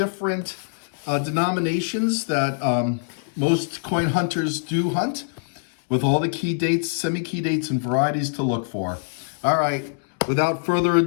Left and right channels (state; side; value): silent; right; digital silence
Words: denominations that most coin hunters do hunt, with all the key dates, semi-key dates, and varieties to look for. All right, without further